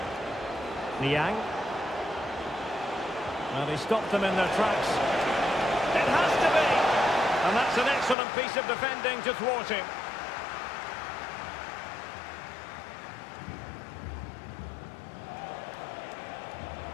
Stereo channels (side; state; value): right; drops out; at 8.2 s